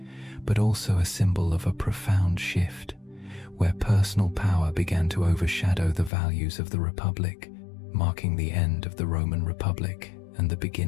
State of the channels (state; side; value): drops out; right; at 6.1 s